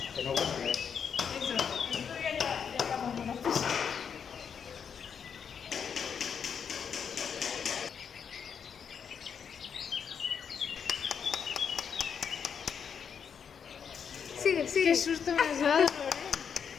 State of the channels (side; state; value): right; quieter; 7.1 dB